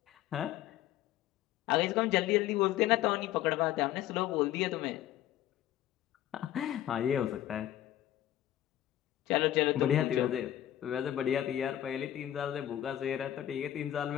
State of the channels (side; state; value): right; quieter; 12.7 dB